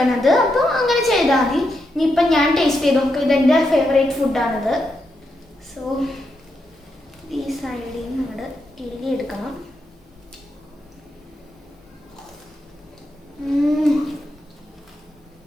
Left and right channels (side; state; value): both; normal; correlation 0.83